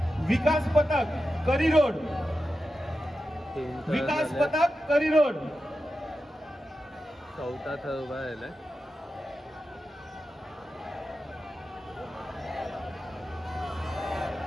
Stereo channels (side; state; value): both; normal; correlation 0.91